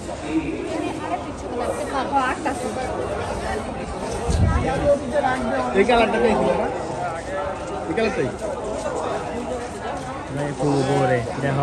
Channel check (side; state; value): both; identical; correlation 1.00